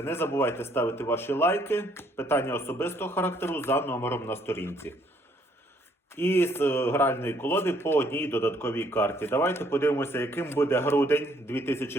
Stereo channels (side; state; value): both; normal; correlation 0.67